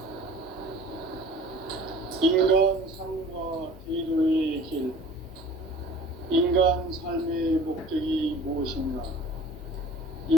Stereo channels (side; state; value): both; normal; correlation 0.45